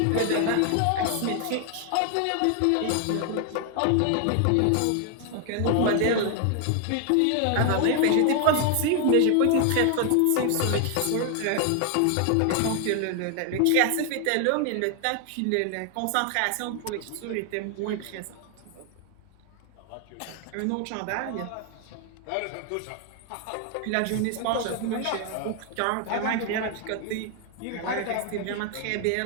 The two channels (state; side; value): different; both; correlation 0.00